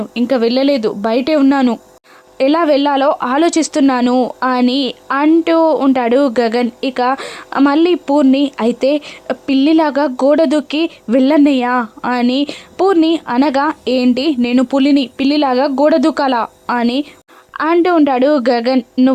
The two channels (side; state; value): both; identical; correlation 1.00